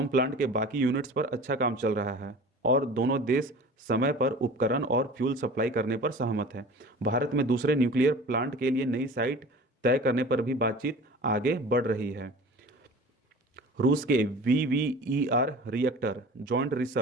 प्लांट के बाकी यूनिट्स पर अच्छा काम चल रहा है और दोनों देश समय पर उपकरण और फ्यूल सप्लाई करने पर सहमत हैं। भारत में दूसरे न्यूक्लियर प्लांट के लिए नई साइट तय करने पर भी बातचीत आगे बढ़ रही है। रूस के वीवीईआर रिएक्टर, जॉइंट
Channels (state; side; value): normal; both; correlation 0.40